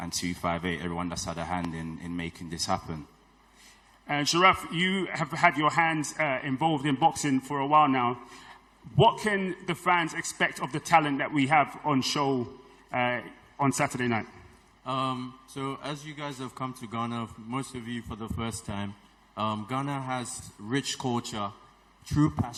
258, everyone that's had a hand in making this happen. And Sharaf, you have had your hands involved in boxing for a while now. What can the fans expect of the talent that we have on show on Saturday night? So as you guys have come to Ghana, most of you for the first time, Ghana has rich culture, true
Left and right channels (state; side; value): identical; both; correlation 1.00